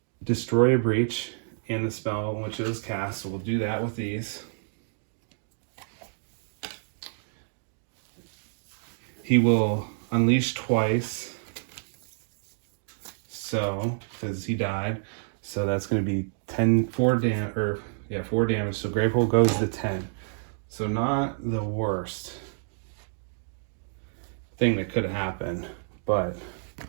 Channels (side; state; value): left; silent; digital silence